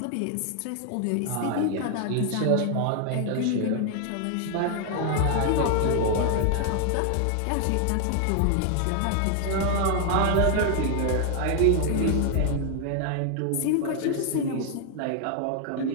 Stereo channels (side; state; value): both; different; correlation 0.00